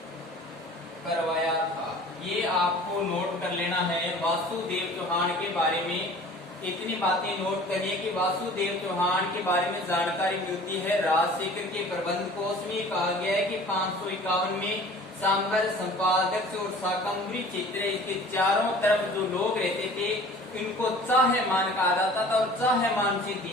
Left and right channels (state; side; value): normal; both; correlation 0.46